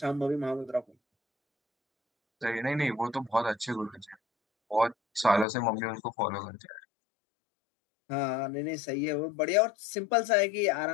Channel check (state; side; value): drops out; right; at 5.5 s